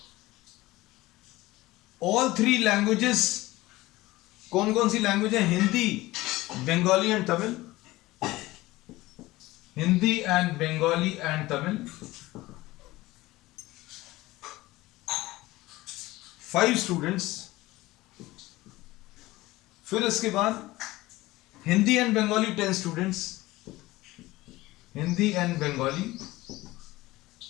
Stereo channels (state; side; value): quieter; right; 18.7 dB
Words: ऑल 3 लैंग्वेजेस, कौन कौन सी लैंग्वेज है? Hindi, Bengali and Tamil. Hindi and Bengali and Tamil. 5 students. फिर इसके बाद Hindi and Bengali 10 students. Hindi and Bengali